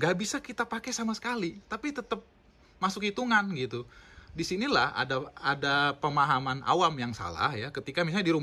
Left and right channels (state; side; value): identical; both; correlation 1.00